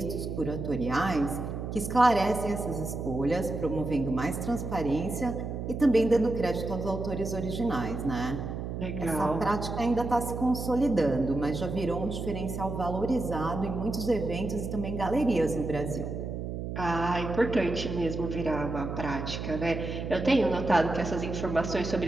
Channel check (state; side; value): noise; right; hum, 5 dB below the sound